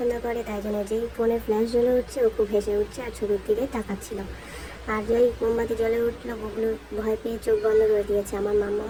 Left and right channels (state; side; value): identical; both; correlation 1.00